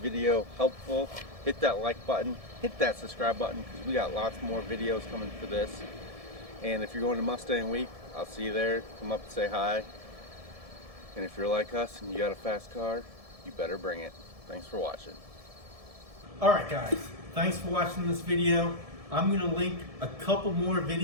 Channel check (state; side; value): late; left; 1.7 ms